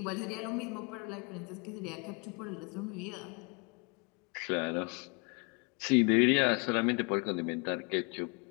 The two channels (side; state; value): right; quieter; 31.8 dB